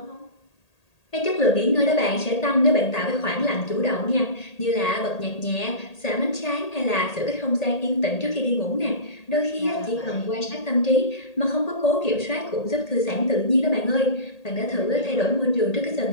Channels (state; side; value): late; right; 1.8 ms